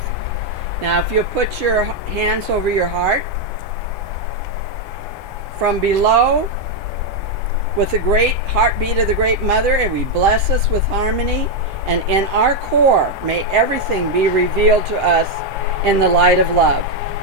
Now, if you'll put your hands over your heart. From below, with the great heartbeat of the Great Mother, and we bless us with harmony And in our core, may everything be revealed to us in the light of love.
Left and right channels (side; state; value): both; normal; correlation 0.02